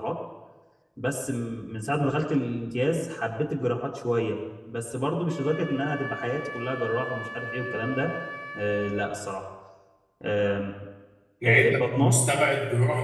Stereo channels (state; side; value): identical; both; correlation 1.00